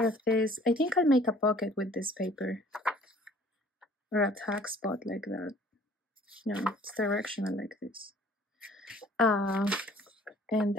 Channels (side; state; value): both; normal; correlation 0.54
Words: of this. I think I'll make a pocket with this paper, or a tag spot like that. No, it's directional like this. And